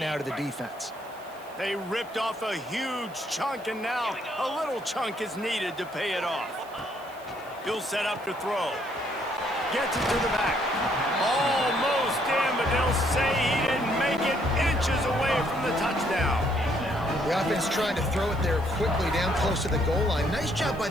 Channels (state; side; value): noise; right; hiss, 25 dB below the sound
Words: to the defense. They ripped off a huge chunk, and now a little chunk is needed to pay it off. He'll set up to throw. Gets it to the back. Almost in, but they'll say he didn't make it, inches away from the touchdown. The offense trying to throw it there quickly down close to the goal line. Nice job by